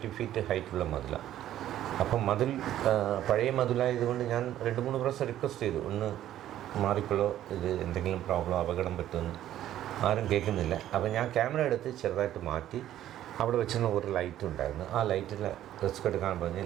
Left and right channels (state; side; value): quieter; left; 12.4 dB